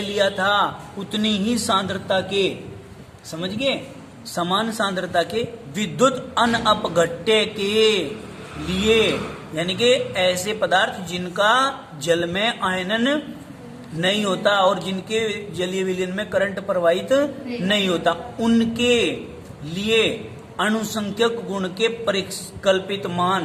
लिया था उतनी ही सांद्रता के, समझ गए? समान सांद्रता के विद्युत अनपघट्य के लिए, यानी कि ऐसे पदार्थ जिनका जल में आयनन नहीं होता और जिनके जलीय विलयन में करंट प्रवाहित नहीं होता, उनके लिए अनुसंख्यक गुण के परिकल्पित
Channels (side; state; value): both; identical; correlation 1.00